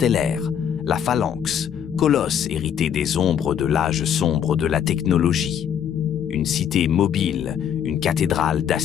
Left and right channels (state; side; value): quieter; right; 8.8 dB